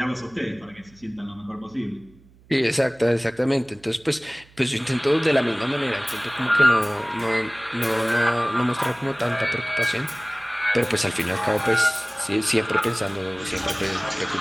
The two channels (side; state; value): right; noise; hum, 27 dB below the sound